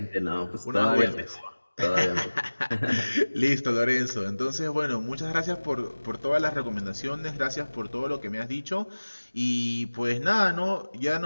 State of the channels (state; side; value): inverted; both; correlation -1.00